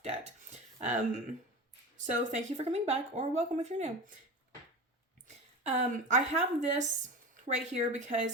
debt. So thank you for coming back, or welcome if you're new. I have this right here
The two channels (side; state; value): both; normal; correlation 0.29